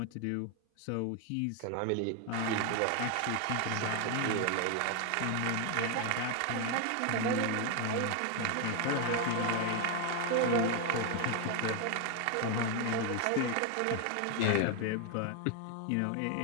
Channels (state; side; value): different; both; correlation 0.01